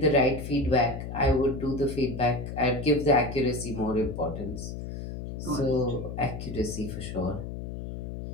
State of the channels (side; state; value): left; noise; hum, 8 dB below the sound